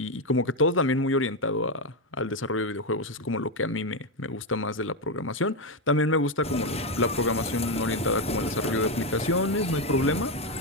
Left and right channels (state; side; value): normal; both; correlation 0.07